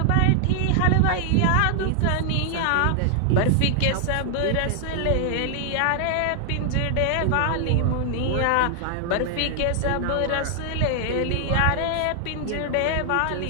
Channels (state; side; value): different; both; correlation 0.00